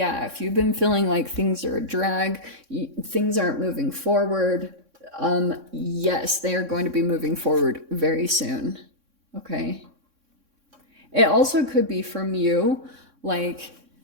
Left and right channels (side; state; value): left; late; 3.6 ms